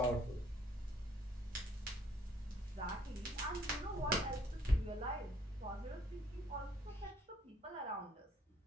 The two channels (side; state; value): both; normal; correlation 0.64